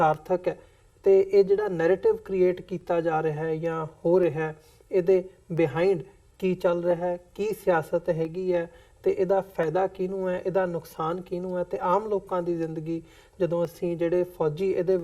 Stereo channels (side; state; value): both; identical; correlation 1.00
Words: ਹੈ ਤੇ ਇਹ ਜਿਹੜਾ ਨੈਰੇਟਿਵ ਕ੍ਰੀਏਟ ਕੀਤਾ ਜਾ ਰਿਹਾ ਹੈ ਜਾਂ ਹੋ ਰਿਹਾ ਹੈ, ਇਹਦੇ ਬਿਹਾਈਂਡ ਕੀ ਚੱਲ ਰਿਹਾ ਹੈ, ਕੀ ਸਿਆਸਤ ਹੈਗੀ ਹੈ ਤੇ ਇਹਦਾ ਫਾਇਦਾ ਕਿਹਨੂੰ ਹੈ, ਇਹਦਾ ਨੁਕਸਾਨ ਕਿਹਨੂੰ ਹੈ ਤੇ ਆਮ ਲੋਕਾਂ ਦੀ ਜ਼ਿੰਦਗੀ, ਜਦੋਂ ਅਸੀਂ ਜਿਹੜੇ ਫੌਜੀ ਇਹਦੇ